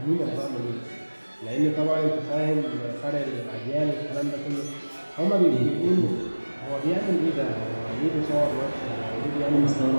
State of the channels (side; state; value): both; inverted; correlation -1.00